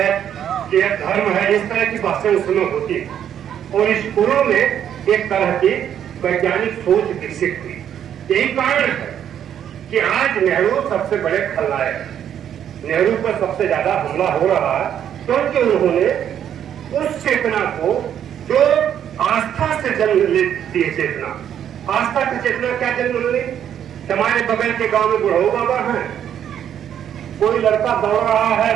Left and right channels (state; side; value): quieter; left; 9.6 dB